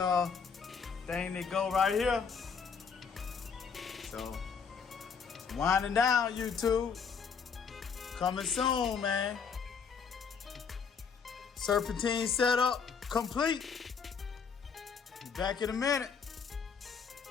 thing that go right here. So, winding down, YouTube. Coming soon, man. Serpentine setup complete. Be back in a minute.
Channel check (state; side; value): quieter; right; 6.1 dB